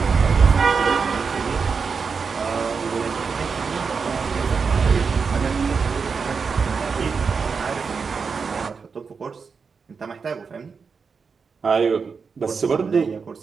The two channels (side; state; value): left; quieter; 5.4 dB